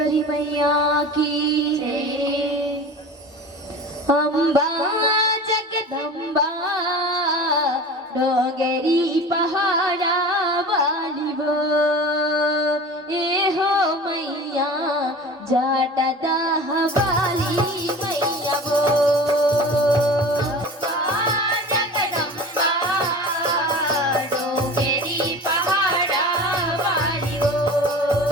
मैया की अम्बा जगदम्बा डोंगरी पहाड़ा वाली वो ए हो मैया जाटादाह वाली मैया वो।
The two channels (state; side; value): normal; both; correlation 0.36